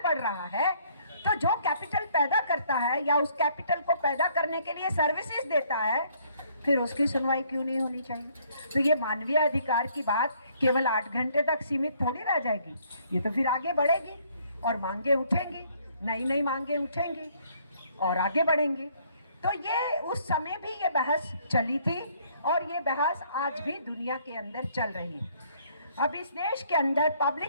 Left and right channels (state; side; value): inverted; both; correlation -0.64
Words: बढ़ रहा है, तो जो कैपिटल पैदा करता है या उस कैपिटल को पैदा करने के लिए सर्विसेज देता है, फिर उसकी सुनवाई क्यों नहीं होनी चाहिए? तो ये मानवीय अधिकार की बात केवल 8 घंटे तक सीमित थोड़ी रह जाएगी, ये तो फिर आगे बढ़ेगी और मांगे उठेंगी, नई नई मांगे उठेंगी और आगे बढ़ेंगे। तो ये उस समय भी ये बहस चली थी और ये बहस आज भी दुनिया के अंदर चल रही है। अब इस देश के अंदर